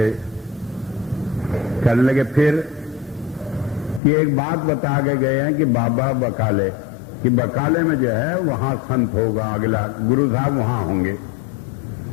कहने लगे फिर? कि एक बात बता के गए हैं कि बाबा बकाले, कि बकाले में जो है वहां संत होगा, अगला गुरु साहब वहां होंगे।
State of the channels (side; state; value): right; drops out; at 4.0 s